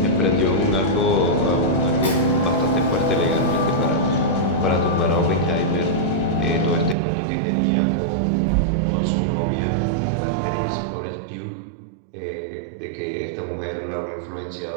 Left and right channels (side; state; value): left; drops out; at 7.0 s